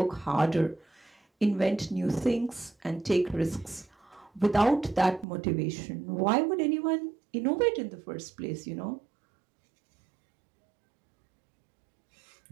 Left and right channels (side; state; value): left; drops out; at 5.2 s